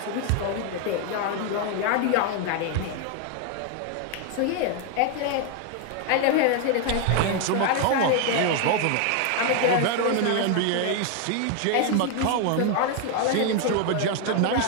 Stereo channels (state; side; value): different; both; correlation 0.01